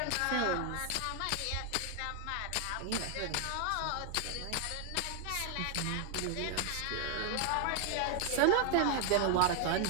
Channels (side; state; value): both; different; correlation 0.00